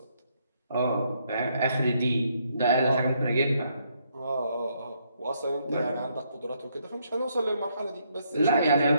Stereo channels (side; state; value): both; inverted; correlation -0.73